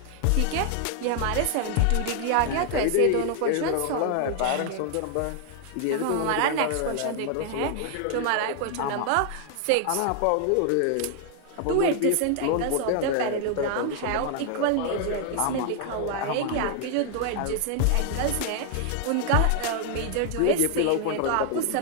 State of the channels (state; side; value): different; both; correlation 0.00